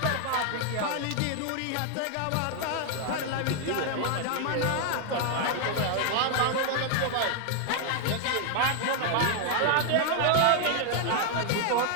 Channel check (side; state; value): both; different; correlation 0.00